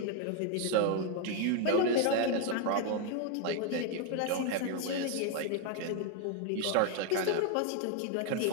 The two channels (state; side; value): different; both; correlation 0.01